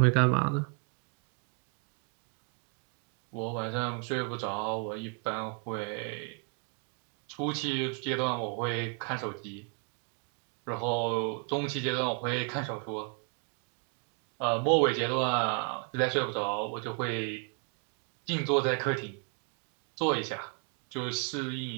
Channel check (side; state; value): left; quieter; 38.7 dB